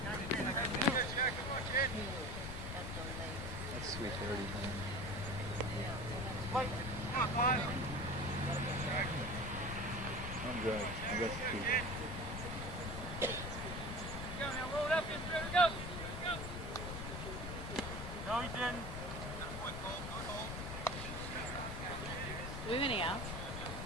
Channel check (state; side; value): noise; left; rumble, 6 dB below the sound